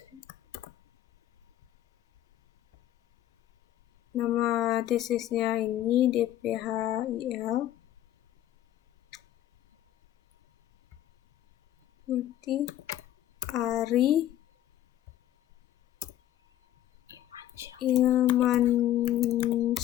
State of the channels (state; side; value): quieter; right; 12.9 dB